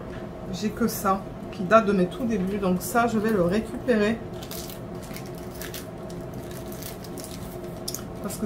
j'ai que ça, qui date de mes tout débuts. Donc ça, je vais le récupérer. Parce que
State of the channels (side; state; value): both; identical; correlation 1.00